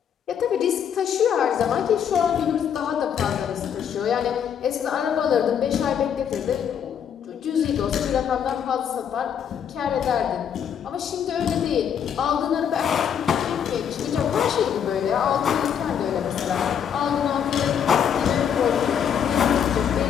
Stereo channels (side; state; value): right; quieter; 8.3 dB